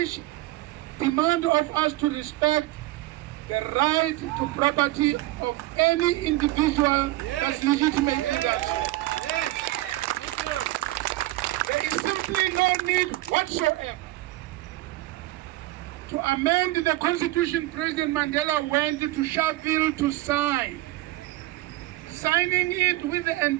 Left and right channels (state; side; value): quieter; left; 17.7 dB